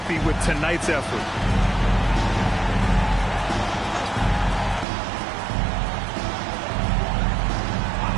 with tonight's effort.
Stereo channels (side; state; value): left; drops out; at 4.9 s